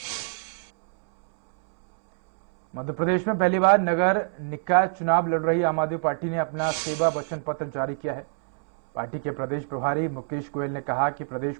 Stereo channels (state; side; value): silent; left; 61 dB below the other